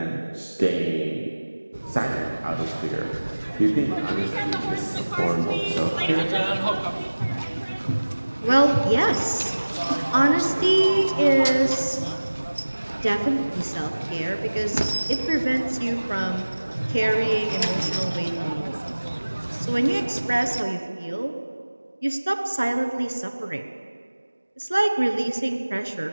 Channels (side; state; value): both; inverted; correlation -1.00